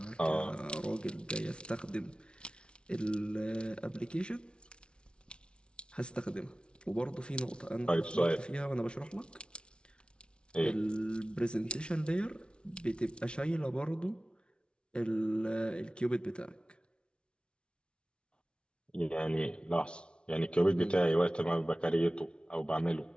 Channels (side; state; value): right; late; 0.057 ms